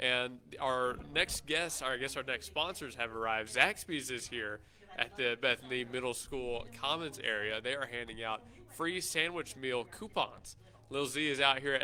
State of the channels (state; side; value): identical; both; correlation 1.00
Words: our next guests, our next sponsors have arrived. Zaxby's is here at the Bethany Middle School Commons area. They are handing out free sandwich meal coupons. Lil Z is out here